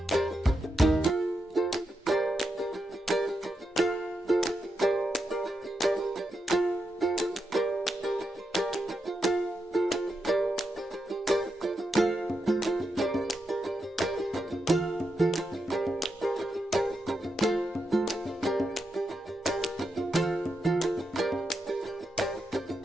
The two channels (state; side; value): normal; both; correlation 0.85